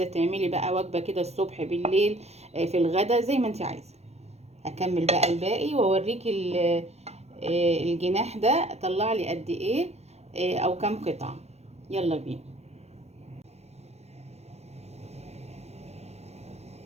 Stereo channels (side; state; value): left; late; 0.31 ms